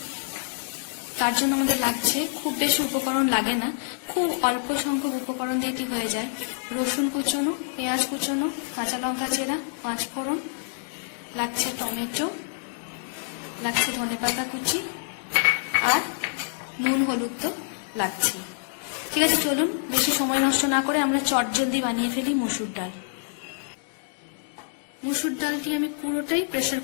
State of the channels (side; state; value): right; silent; digital silence